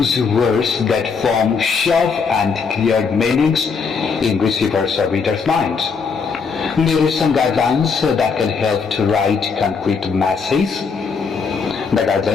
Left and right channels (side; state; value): right; quieter; 5.3 dB